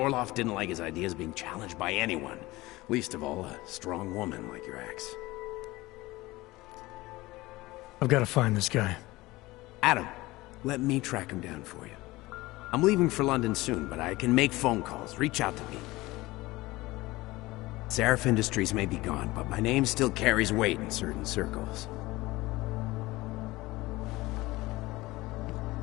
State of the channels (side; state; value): right; quieter; 19.8 dB